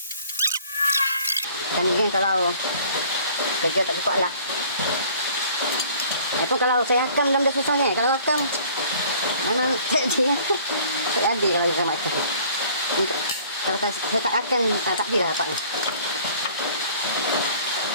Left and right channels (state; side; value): inverted; both; correlation -0.53